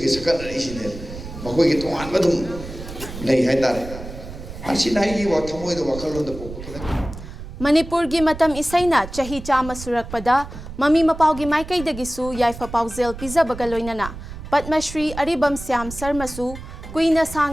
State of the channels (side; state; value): right; noise; rumble, 12 dB below the sound